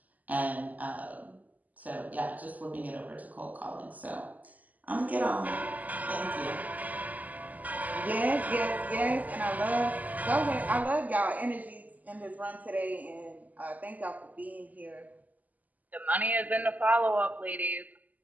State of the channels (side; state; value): left; late; 0.079 ms